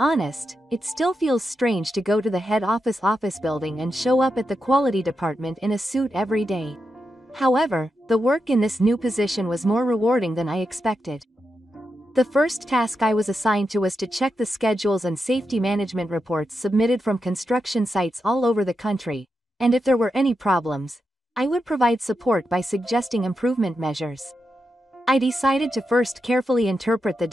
it still feels strange to go to the head office building and show up at the quality department in a suit every day. However, the work in this new position was more rewarding than I expected. The first task I was assigned to was to check the schedules and safety management reports submitted from construction sites all over the country, and if there were any problems, I would provide support by suggesting improvement measures. I decided to first carefully interpret the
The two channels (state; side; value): normal; both; correlation 0.87